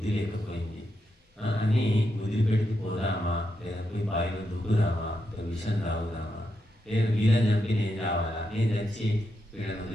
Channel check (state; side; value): normal; both; correlation 0.84